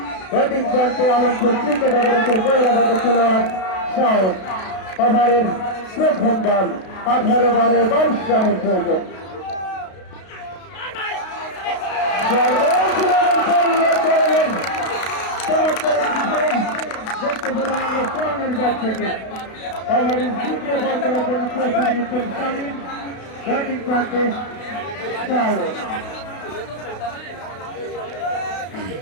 ব্যাটিং প্রান্তে আলমপুর ক্রিকেট একাদশের বহিরাগত খেলোয়াড় শাওন। ওভারের প্রথম বল 18-22 রানের প্রয়োজন। ওভারের দ্বিতীয় বল করার জন্য প্রস্তুতি নিচ্ছেন শামীম, ব্যাটিং প্রান্তে শাওন।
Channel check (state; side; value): late; right; 33 ms